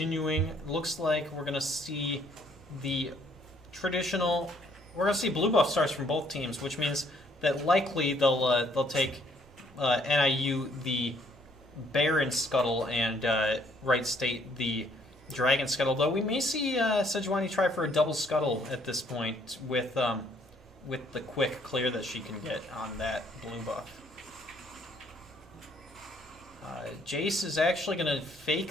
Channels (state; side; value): normal; both; correlation 0.65